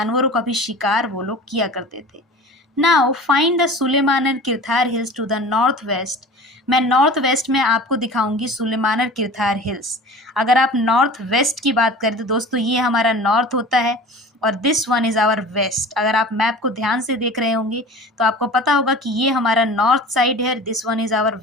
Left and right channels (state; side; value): normal; both; correlation 0.39